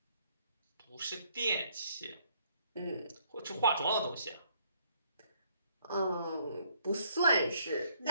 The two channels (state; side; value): inverted; both; correlation -0.67